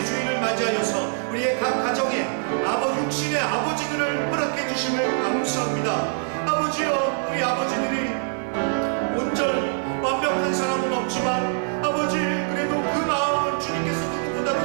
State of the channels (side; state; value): left; silent; digital silence